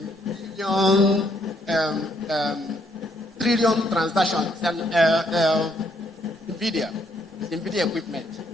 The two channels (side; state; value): both; normal; correlation 0.71